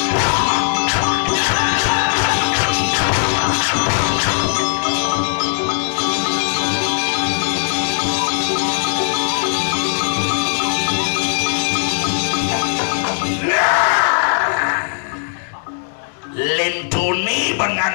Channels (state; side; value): silent; right; 67 dB below the other